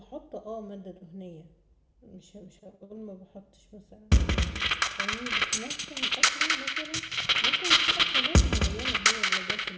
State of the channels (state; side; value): identical; both; correlation 1.00